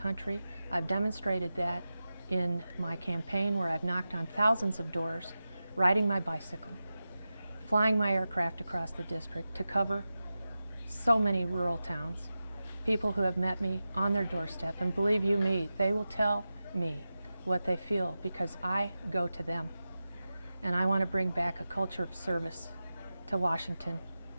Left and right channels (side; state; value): both; inverted; correlation -0.93